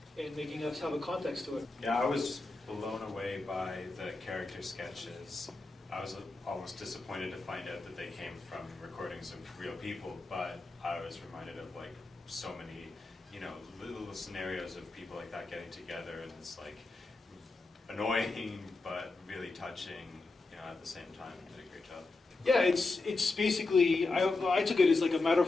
and making us have a context to it. Yeah, I was blown away by the character sketches. I was almost disappointed to find out that they came from recordings of real people, but I was reminded of like so many, little scenarios of people like that getting together, and it's like annoying but really touching, at the same time. They did a great job. Yeah, it's basically, I took it as like a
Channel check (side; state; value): right; quieter; 3.4 dB